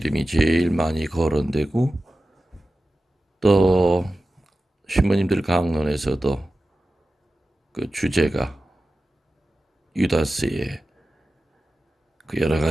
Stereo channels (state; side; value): normal; both; correlation 0.94